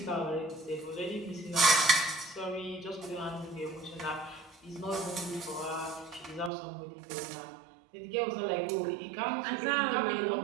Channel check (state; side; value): drops out; left; at 6.5 s